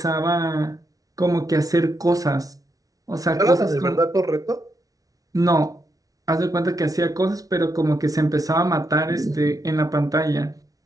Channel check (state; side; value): late; left; 0.18 ms